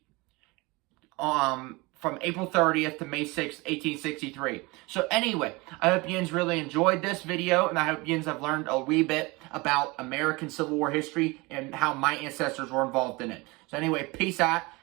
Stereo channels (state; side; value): quieter; left; 24.5 dB